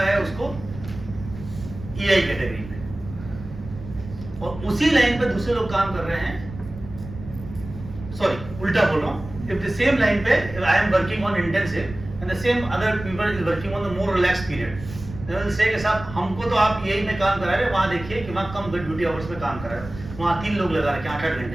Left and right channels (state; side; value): noise; right; rumble, 13 dB below the sound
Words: है उसको ईआई कैटेगरी में, और उसी लाइन पे दूसरे लोग काम कर रहे हैं. सॉरी, उल्टा बोल रहा हूँ. इफ द सेम लाइन पे I am working on intensive and the same other people is working on the more relaxed period, they will say कि साहब हमको तो आप यही में काम करा रहे हैं, वहाँ देखिए कि वहाँ कम ड्यूटी आवर्स में काम करा रहे हैं, वहाँ 3 लोग लगा रखे हैं 8-8